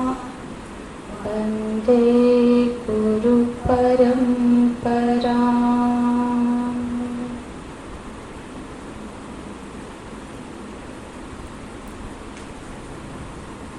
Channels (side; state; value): both; identical; correlation 1.00